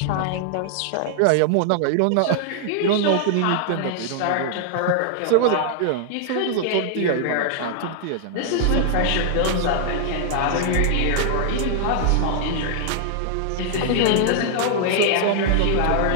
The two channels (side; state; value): both; different; correlation -0.01